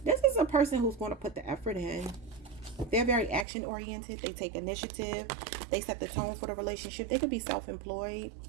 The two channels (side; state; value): left; drops out; at 3.5 s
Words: this is a person who's going to put the effort in. They're very action oriented. They take initiative. They set the tone for the relationship. They could be self-employed,